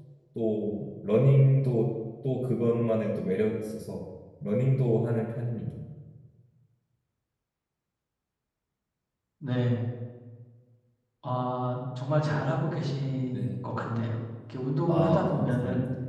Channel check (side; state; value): both; identical; correlation 1.00